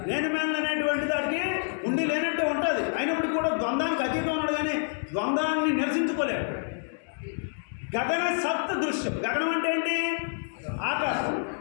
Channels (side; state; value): right; silent; 59 dB below the other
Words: నేను మేలు అనేటువంటి దానికి ఉండి లేనట్టు ఉంటుంది. అయినప్పటికీ కూడా ద్వంద్వానికి అతీతం ఉన్నాడు, కానీ ద్వంద్వాన్ని నిరసించుకోలేడు. గగన సప్త దృశ్యం. గగనం అంటే ఏంటి? ఆకాశం.